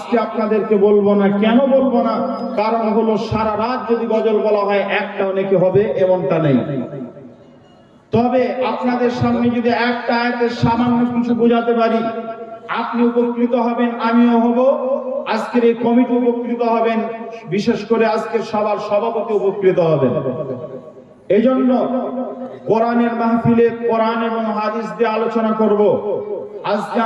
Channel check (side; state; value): both; identical; correlation 1.00